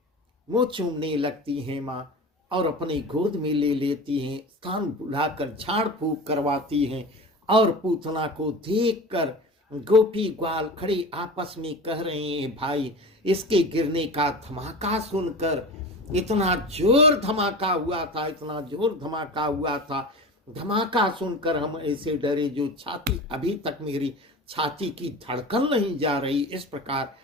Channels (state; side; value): normal; both; correlation 0.33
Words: मुंह चूमने लगती हैं माँ, और अपने गोद में ले लेती हैं, कान बुलाकर झाड़ फूक करवाती हैं। और पूतना को देखकर गोपी ग्वाल खड़े आपस में कह रहे हैं, भाई इसके गिरने का धमाका सुनकर, इतना जोर धमाका हुआ था, इतना जोर धमाका हुआ था, धमाका सुनकर हम ऐसे डरे जो छाती, अभी तक मेरी छाती की धड़कन नहीं जा रही। इस प्रकार